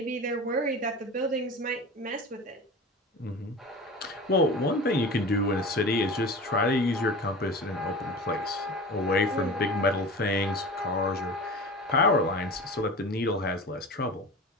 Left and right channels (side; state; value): both; normal; correlation 0.33